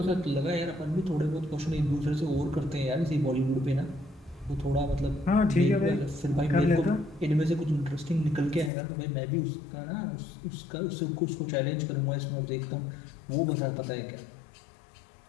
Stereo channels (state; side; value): drops out; right; at 8.7 s